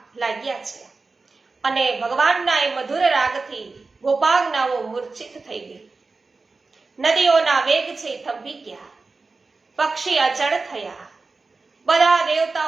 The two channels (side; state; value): left; quieter; 3.9 dB